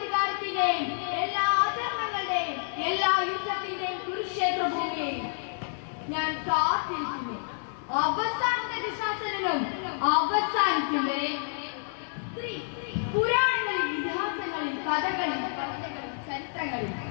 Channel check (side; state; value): right; silent; digital silence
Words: എല്ലാ അധർമ്മങ്ങളുടെയും എല്ലാ യുദ്ധത്തിന്റെയും കുരുക്ഷേത്ര ഭൂമിയെയും ഞാൻ കാത്തിരിക്കുന്നു. അവസാനത്തെ ദുശാസനം അവസാനിക്കും വരെ സ്ത്രീ പുരാണങ്ങളിൽ, ഇതിഹാസങ്ങളിൽ, കഥകളിൽ, കവിതകളിൽ, ചരിത്രങ്ങളിൽ